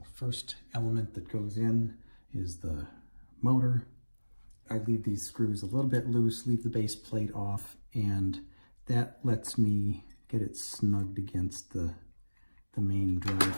first element that goes in is the motor. I leave these screws a little bit loose, leave the base plate off, and that lets me get it snugged against the main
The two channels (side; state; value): both; inverted; correlation -1.00